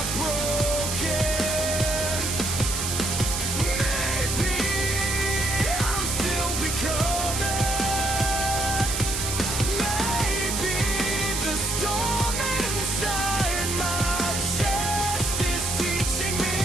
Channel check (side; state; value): right; noise; hiss, 2 dB below the sound